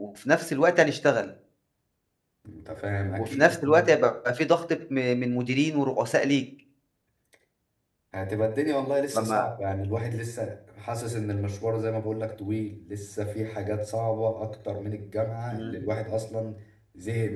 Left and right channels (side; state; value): both; identical; correlation 1.00